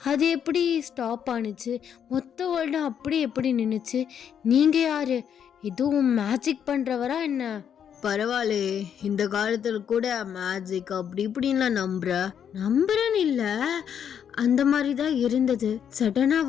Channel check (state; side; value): quieter; right; 8.5 dB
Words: அது எப்படி ஸ்டாப் ஆணுச்சு? மொத்த வேர்ல்டு அப்படி எப்படி நின்றுச்சு? நீங்கள் யார்? எதுவும் மேஜிக் பண்ணுறவரா என்ன? பரவாயில்ல, இந்த காலத்தில் கூட மேஜிக் அப்படி இப்படின்லாம் நம்புறேன்னு இல்லை, அந்த மாதிரி தான் இருந்தது. சடனாக